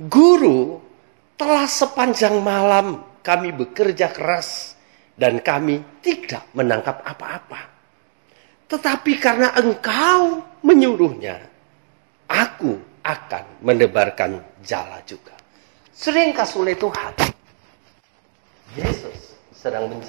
"Guru, telah sepanjang malam kami bekerja keras dan kami tidak menangkap apa-apa. Tetapi karena Engkau menyuruhnya, aku akan menebarkan jala juga." Sering kasih oleh Tuhan, Yesus sedang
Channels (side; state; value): left; silent; digital silence